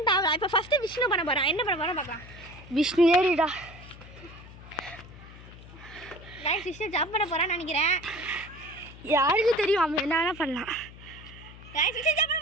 தாவலாம். இப்போ ஃபஸ்ட்டு விஷ்ணு பண்ண போகிறான். என்ன பண்ண போகிறான் பார்க்கலாம். விஷ்ணு ஏறிடா. கைஸ் விஷ்ணு ஜம்ப் பண்ண போகிறான்னு நினைக்கிறேன். யாருக்கு தெரியும், அவன் என்ன வேணால் பண்ணலாம். கைஸ் விஷ்ணு ஜம்ப் பண்ண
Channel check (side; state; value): left; noise; hum, 18 dB below the sound